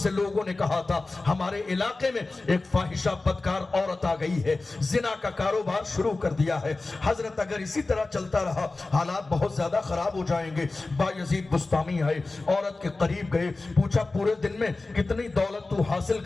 لوگوں نے کہا تھا ہمارے علاقے میں ایک فاحشہ بدکار عورت آ گئی ہے، زنا کا کاروبار شروع کر دیا ہے. حضرت اگر اسی طرح چلتا رہا حالات بہت زیادہ خراب ہو جائیں گے. بایزید بستامی آئے، عورت کے قریب گئے، پوچھا پورے دن میں کتنی دولت تو حاصل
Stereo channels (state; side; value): quieter; right; 3.4 dB